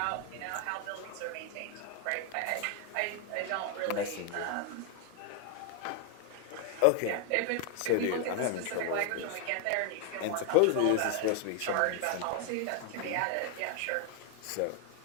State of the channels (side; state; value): both; different; correlation 0.00